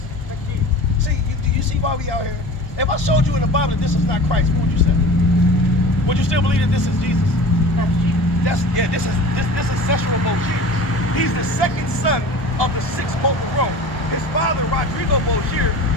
See, do you see why we out here? If I showed you in the Bible that this is not Christ, what would you say? Would you still believe that this is Jesus? This is Cecil Borgia. He's the second son of the sixth Pope of Rome. His father, Rodrigo Borgia,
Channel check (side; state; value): right; late; 1.2 ms